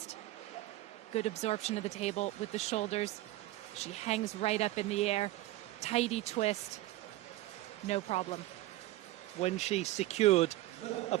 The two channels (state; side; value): quieter; left; 16.8 dB